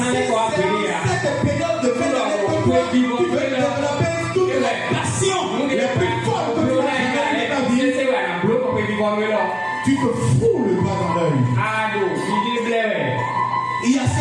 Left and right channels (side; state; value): both; identical; correlation 1.00